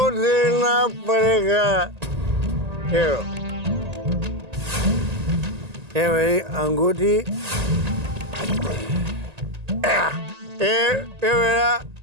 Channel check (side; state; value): left; late; 1.8 ms